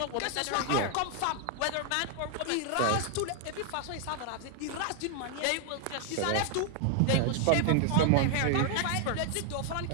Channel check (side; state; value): both; different; correlation 0.00